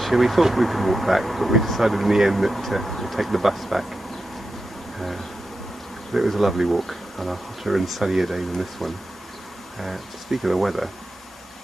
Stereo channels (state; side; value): normal; both; correlation 0.90